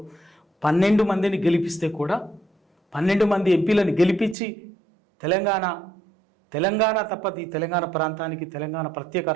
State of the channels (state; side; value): drops out; left; at 4.4 s